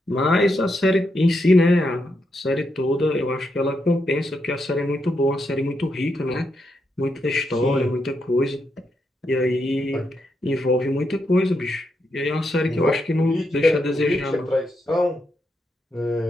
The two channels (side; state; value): both; normal; correlation 0.82